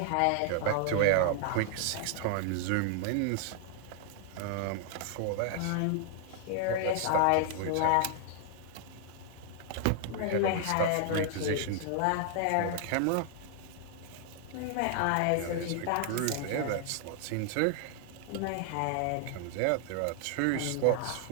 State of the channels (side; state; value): both; different; correlation 0.00